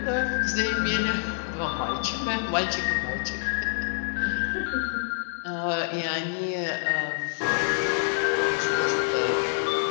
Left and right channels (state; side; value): silent; right; digital silence